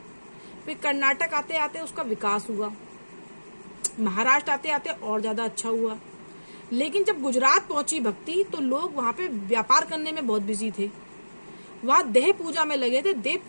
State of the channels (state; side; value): inverted; both; correlation -1.00